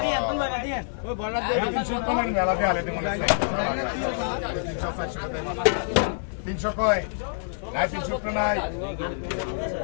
আর তুই লাগা দিয়ে ওই বড় দিয়ে 300 কয় মেলা দিয়ে আলে মনে আছে 300 কয় নাই 300 নাই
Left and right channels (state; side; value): silent; right; 55 dB below the other